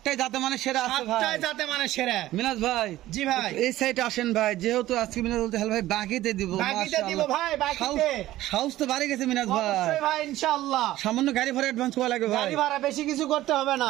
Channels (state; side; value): quieter; left; 15.2 dB